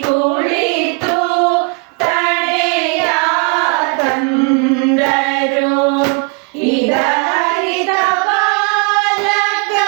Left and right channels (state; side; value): quieter; left; 32.6 dB